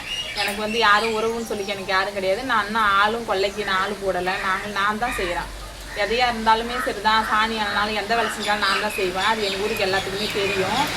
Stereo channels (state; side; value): identical; both; correlation 1.00